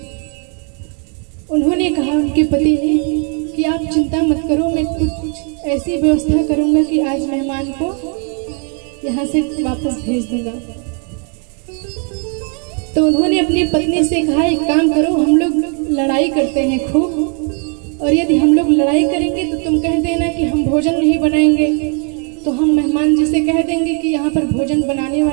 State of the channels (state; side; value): quieter; left; 37.8 dB